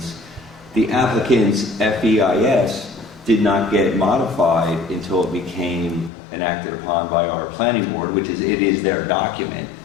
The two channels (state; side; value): drops out; right; at 6.1 s